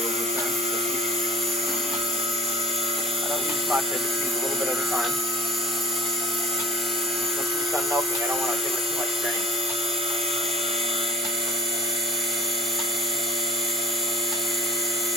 will return. So I don't use much, I just use a little bit at a time. Once she's done milking, I don't want to give her too much grain.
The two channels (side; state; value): both; normal; correlation 0.46